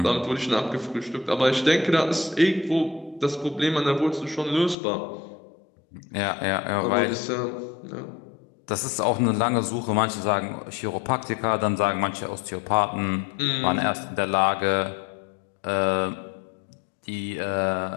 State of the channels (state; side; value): drops out; right; at 4.8 s